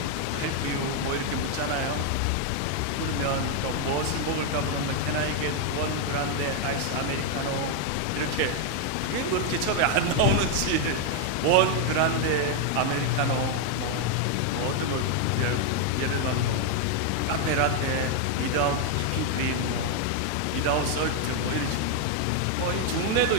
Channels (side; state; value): both; different; correlation 0.01